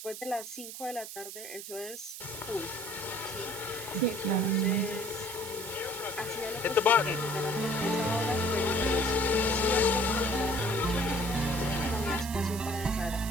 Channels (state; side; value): noise; right; hiss, 10 dB below the sound